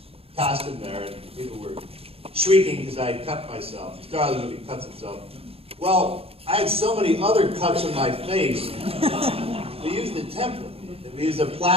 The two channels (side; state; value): left; late; 0.28 ms